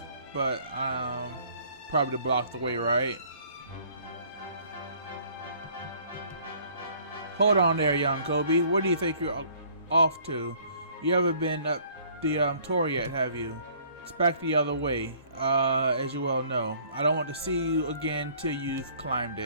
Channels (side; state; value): both; inverted; correlation -0.57